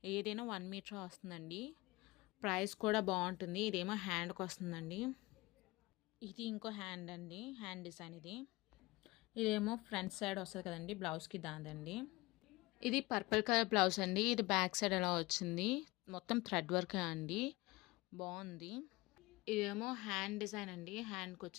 ఏదైనా 1 మీటర్ వస్తుందండి. ప్రైస్ కూడా బాగుంటుంది. ఇదేమో హ్యాండ్కి వస్తుందండి. ఇది ఇంకో హ్యాండ్ అండి, హ్యాండ్ డిజైన్ ఇది. ఇదేమో ఫ్రంట్ సైడ్ వస్తుంది కదండి బ్లౌజ్కి, దాందండి. ఇది పర్పుల్ కలర్ బ్లౌజ్ అండి. ఇది బ్యాక్ సైడ్ ఎలా వచ్చింది, మొత్తం థ్రెడ్ వర్క్ అండి, బాగుంది. ఇదేమో హ్యాండ్ డిజైన్ అండి, హ్యాండ్కి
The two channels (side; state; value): right; quieter; 21.5 dB